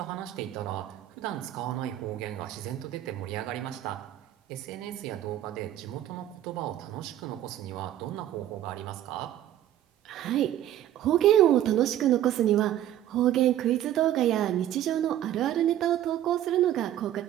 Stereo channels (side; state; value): left; quieter; 12.2 dB